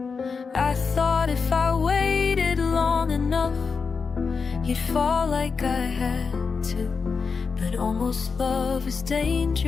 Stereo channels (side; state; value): right; quieter; 5.2 dB